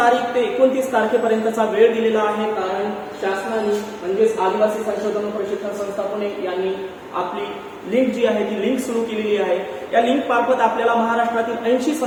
ते 29 तारखेपर्यंतचा वेळ दिलेला आहे, कारण शासनाने म्हणजेच आदिवासी संशोधन व प्रशिक्षण संस्था पुणे यांनी आपली लिंक जी आहे ती लिंक सुरू केलेली आहे। या लिंक मार्फत आपल्याला महाराष्ट्रातील 80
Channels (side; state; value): both; identical; correlation 1.00